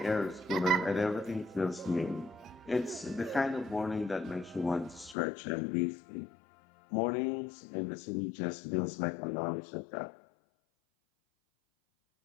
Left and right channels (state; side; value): drops out; right; at 5.2 s